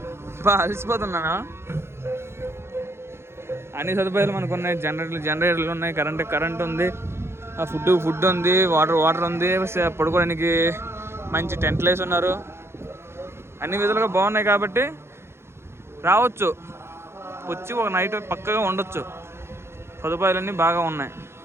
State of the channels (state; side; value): late; left; 0.12 ms